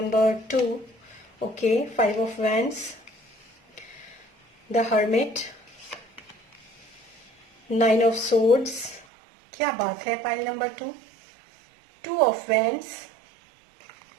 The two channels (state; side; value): drops out; left; at 9.1 s